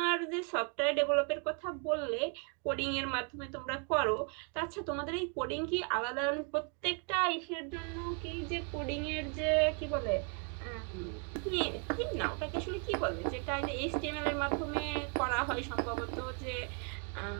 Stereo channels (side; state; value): left; quieter; 38.1 dB